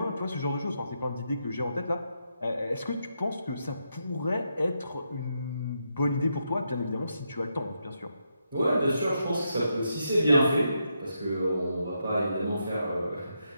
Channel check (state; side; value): inverted; both; correlation -0.82